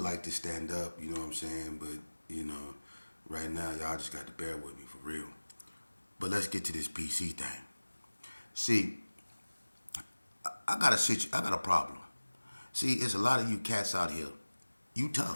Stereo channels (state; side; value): inverted; both; correlation -1.00